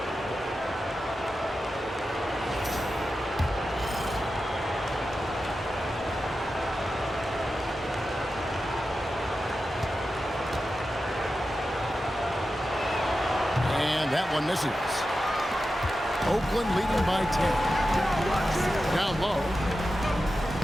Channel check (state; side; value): normal; both; correlation 0.91